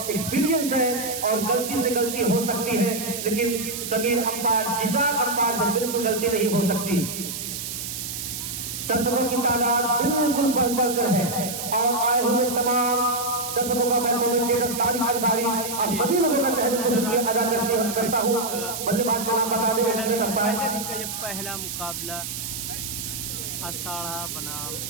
एक्सपीरियंस है और गलती से गलती हो सकती है, लेकिन समीर अंपायर, जीशा अंपायर से बिल्कुल गलती नहीं हो सकती। दर्शकों की तादाद बिल्कुल बढ़ चढ़कर है और आए हुए तमाम दर्शकों का मैं कमेंटेटर तारिक अंसारी और सभी लोगों का तहे से शुक्रिया अदा करता हूँ। बल्लेबाज का नाम बता दें। ये पहला मुकाबला अषाढ़ा बनाम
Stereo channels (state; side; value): noise; right; hiss, 6 dB below the sound